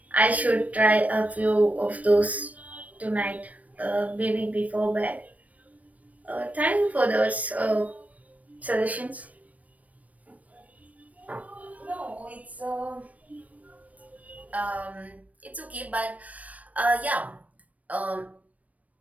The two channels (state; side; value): late; left; 0.069 ms